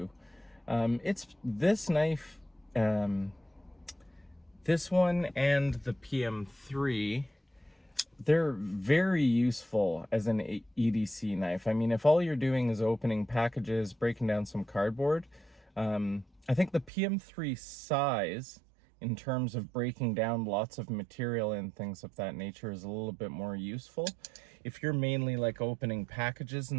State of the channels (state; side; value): drops out; left; at 16.9 s